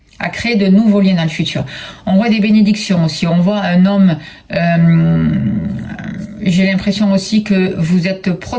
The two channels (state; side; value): identical; both; correlation 1.00